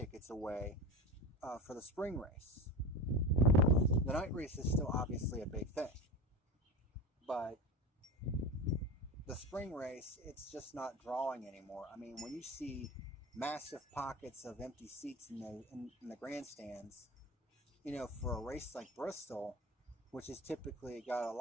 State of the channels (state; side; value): normal; both; correlation 0.29